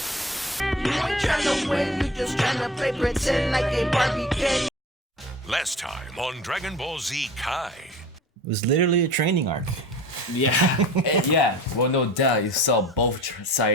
ain't trying to win, you just trying to play pretend like a Barbie kid. Last time on Dragon Ball Z Kai. It was literally a training arc. Yeah, yeah. Well, no doubt, you saw both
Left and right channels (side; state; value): both; normal; correlation 0.40